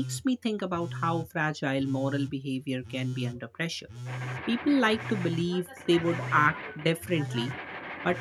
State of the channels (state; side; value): identical; both; correlation 1.00